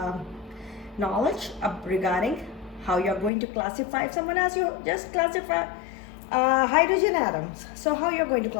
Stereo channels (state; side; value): drops out; right; at 3.3 s